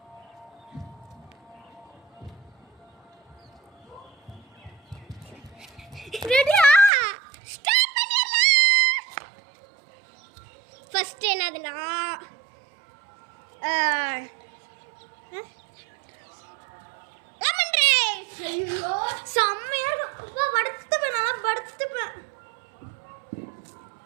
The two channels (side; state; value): left; drops out; at 6.9 s